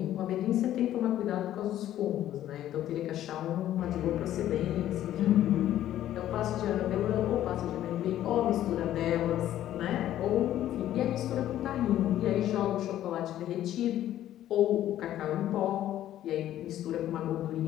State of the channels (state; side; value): quieter; right; 12.5 dB